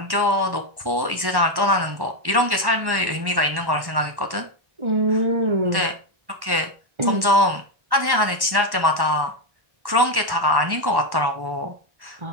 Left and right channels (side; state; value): left; late; 1.1 ms